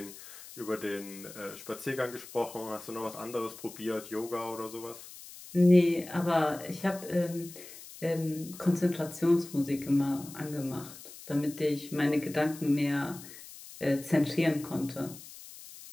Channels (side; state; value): left; noise; hiss, 16 dB below the sound